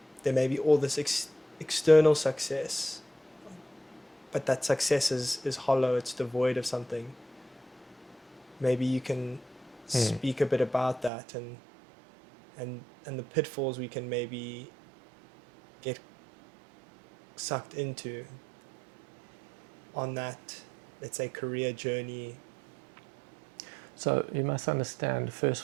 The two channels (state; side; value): drops out; left; at 11.1 s